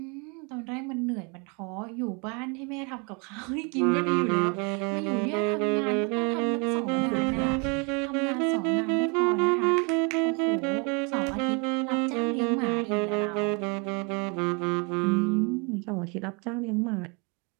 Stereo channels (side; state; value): left; quieter; 32.6 dB